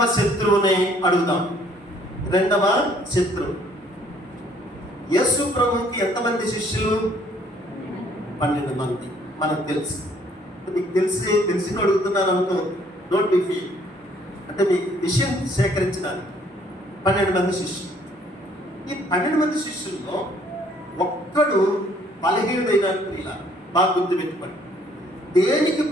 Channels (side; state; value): both; normal; correlation 0.62